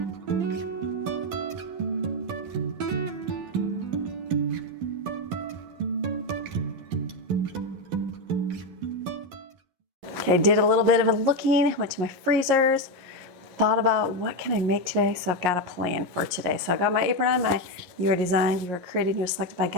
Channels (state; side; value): late; left; 11 ms